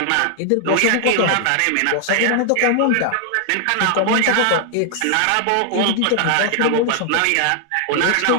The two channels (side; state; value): both; different; correlation 0.00